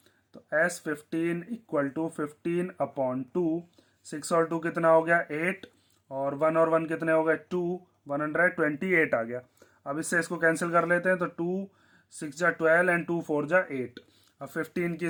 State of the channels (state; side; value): identical; both; correlation 1.00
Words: तो S15 इक्वल टू 15/2, 6 और 2 कितना हो गया 8, और 1 और 1 कितने हो गए 2, 128 आ गया। अब इससे इसको कैंसिल कर लेते हैं, तो 2 6 जा 12 एंड 2 4 जा 8। अब 15 की